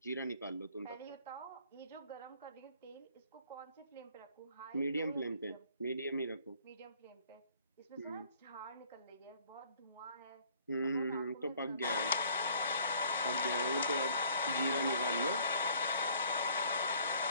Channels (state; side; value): inverted; both; correlation -0.57